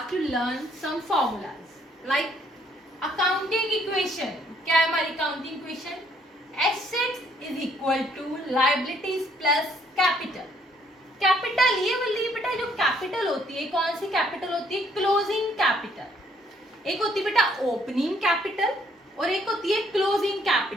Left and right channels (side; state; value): both; normal; correlation 0.66